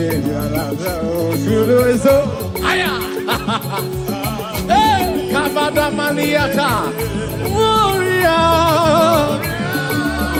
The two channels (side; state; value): both; identical; correlation 1.00